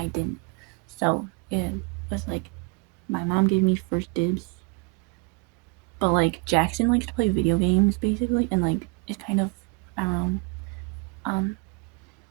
didn't. So it was like my mom gave me first dibs. But like Jackson likes to play video games basically, and like it's kind of, I don't know.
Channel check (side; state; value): left; quieter; 31.9 dB